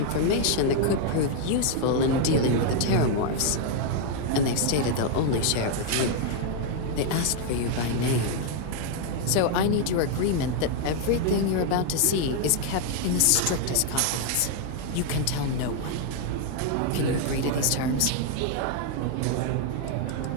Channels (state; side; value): different; both; correlation 0.00